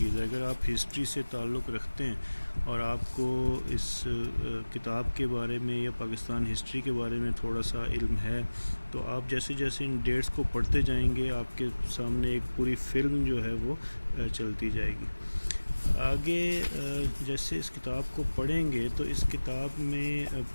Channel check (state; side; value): inverted; both; correlation -1.00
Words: ہے، اگر آپ ہسٹری سے تعلق رکھتے ہیں اور آپ کو اس کتاب کے بارے میں یا پاکستان ہسٹری کے بارے میں تھوڑا سا علم ہے، تو آپ جیسے جیسے ان ڈیٹس کو پڑھتے جائیں گے آپ کے سامنے ایک پوری فلم جو ہے وہ چلتی جائے گی۔ آگے جیسے اس کتاب کو پڑھیں گے تو اس کتاب میں